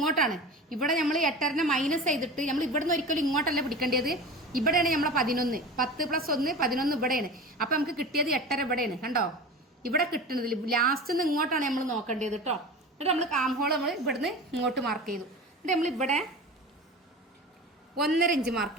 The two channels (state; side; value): normal; both; correlation 0.33